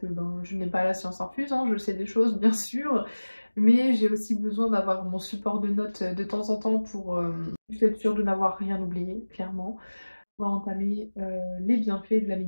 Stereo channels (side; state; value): both; inverted; correlation -1.00